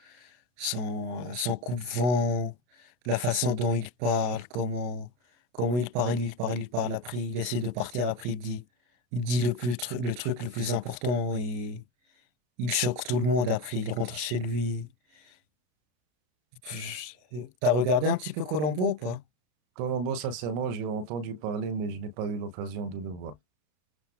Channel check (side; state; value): left; late; 33 ms